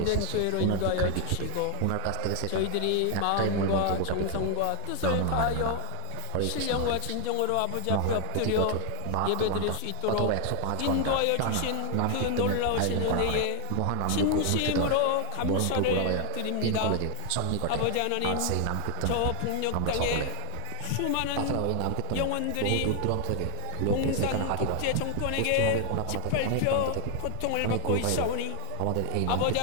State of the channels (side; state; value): both; different; correlation 0.00